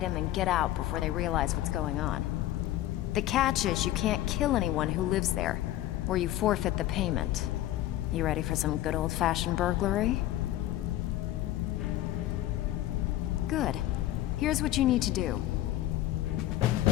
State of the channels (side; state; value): right; quieter; 14.2 dB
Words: and get out before they realize what's going on. The catch is you can't kill anyone who lives there, or you forfeit the payment. You ready for some good old-fashioned burglary? Good. Here's what you need to do.